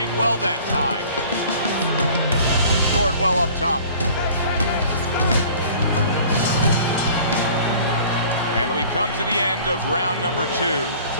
well that time. Scored well up top. And we come to the end of round number 2. It's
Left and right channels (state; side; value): inverted; both; correlation -0.48